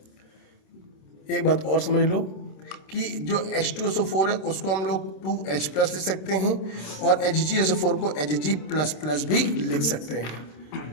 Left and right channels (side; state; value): right; late; 27 ms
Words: एक बात और समझ लो कि जो H2SO4 है उसको हम लोग 2H प्लस लिख सकते हैं और HgSO4 को Hg++ भी लिख सकते हैं।